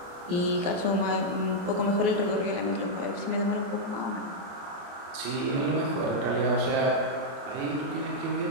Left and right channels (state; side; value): late; left; 28 ms